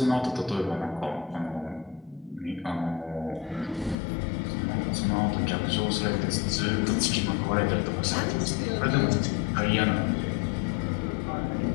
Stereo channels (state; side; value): drops out; right; at 4.0 s